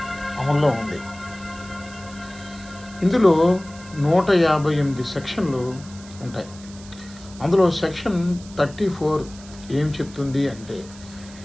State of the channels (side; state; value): right; noise; hiss, 20 dB below the sound